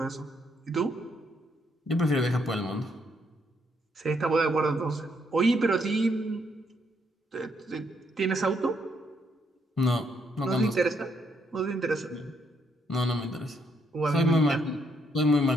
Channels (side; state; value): both; normal; correlation 0.73